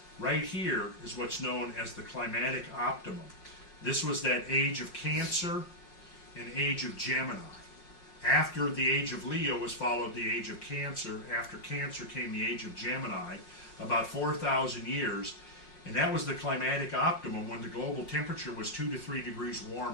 right here is what's known as the climatic optimum. This was that age of Cancer and age of Gemini. After the age of Leo was followed the age of Cancer. After Cancer came the age of Gemini, about 4,000 years. And that was the climatic optimum when the global temperature was 2 to 3 degrees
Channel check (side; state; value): right; late; 5.5 ms